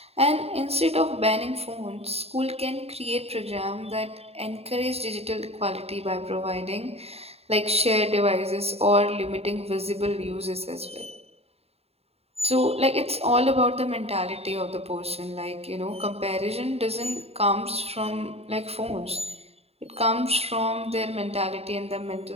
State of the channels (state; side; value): late; left; 0.29 ms